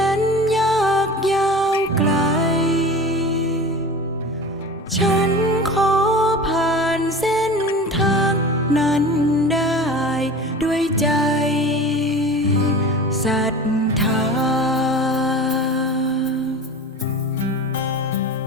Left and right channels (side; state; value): both; normal; correlation 0.35